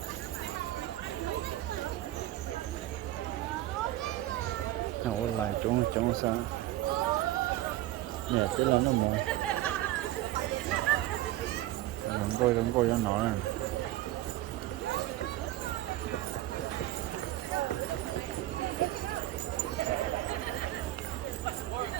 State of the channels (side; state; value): left; quieter; 15.3 dB